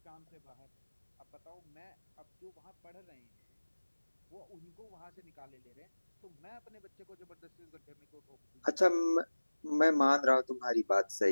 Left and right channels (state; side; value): inverted; both; correlation -1.00